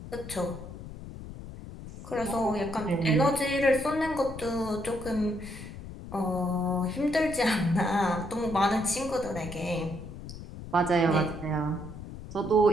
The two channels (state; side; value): noise; left; rumble, 12 dB below the sound